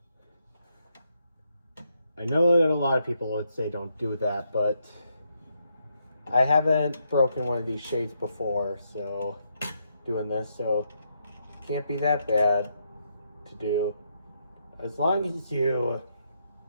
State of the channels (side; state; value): both; inverted; correlation -0.78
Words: I know that a lot of people would say don't do that, but I haven't broken one of these shades before, so doing this, so can't be that bad to do. As long as you